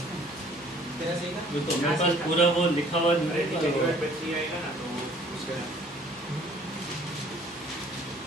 तेरा सही था। ये तो मेरे पास पूरा वो लिखा हुआ न्यूमरेटर है। आएगा ना तो उसका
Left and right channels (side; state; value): both; normal; correlation 0.56